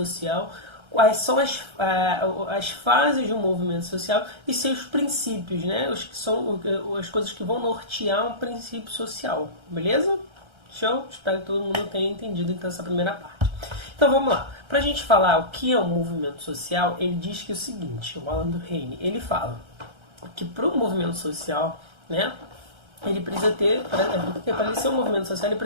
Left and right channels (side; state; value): left; late; 1.3 ms